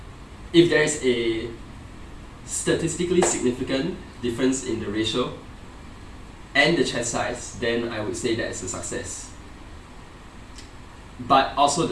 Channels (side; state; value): both; identical; correlation 1.00